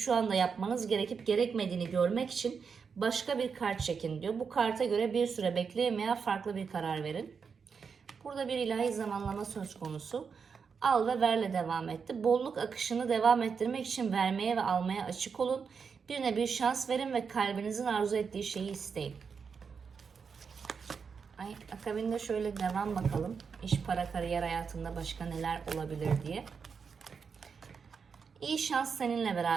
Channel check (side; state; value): left; quieter; 5.9 dB